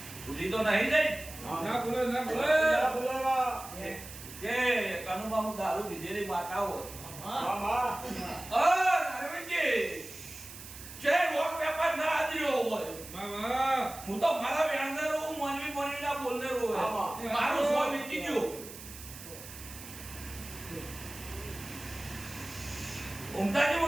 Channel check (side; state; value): right; noise; hiss, 14 dB below the sound